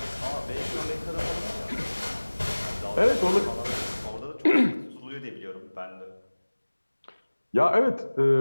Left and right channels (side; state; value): both; inverted; correlation -1.00